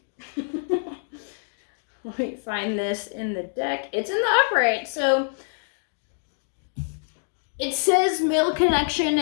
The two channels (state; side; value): silent; right; digital silence